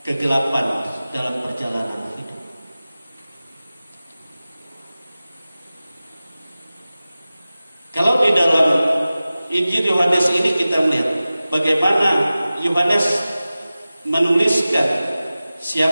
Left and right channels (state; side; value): inverted; both; correlation -0.96